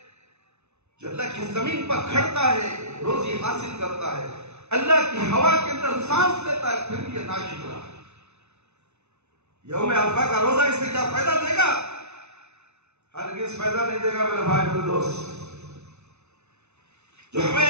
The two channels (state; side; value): late; left; 0.81 ms